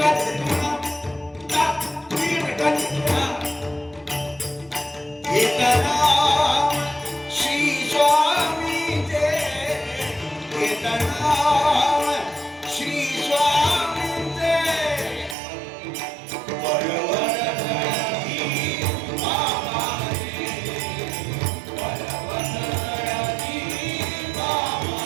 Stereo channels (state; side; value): drops out; left; at 15.4 s